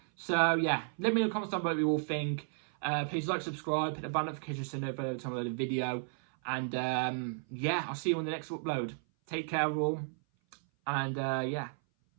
So, yeah, let me know in the comments down below what you all think. Please like, subscribe, hit the bell notification so you know every time I upload a video. And, yeah, I'll see you on the next upload. Take care, all. And, yeah,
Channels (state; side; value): silent; left; 55 dB below the other